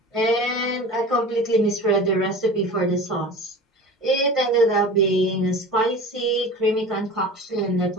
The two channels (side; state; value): both; normal; correlation 0.36